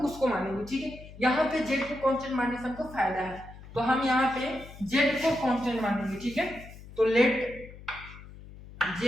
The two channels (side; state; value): left; noise; hum, 17 dB below the sound